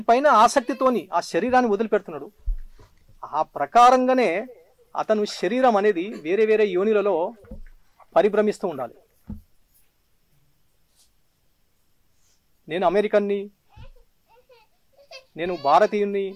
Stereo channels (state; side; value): identical; both; correlation 1.00